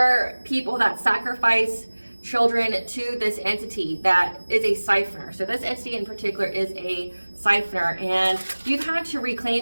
people that sacrifice children to this entity that is a siphoner. So this entity in particular is a siphoner, and you've had to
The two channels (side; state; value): both; inverted; correlation -1.00